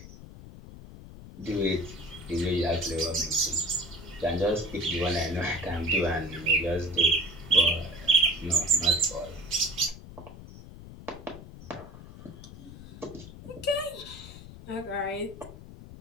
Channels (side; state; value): left; noise; rumble, 15 dB below the sound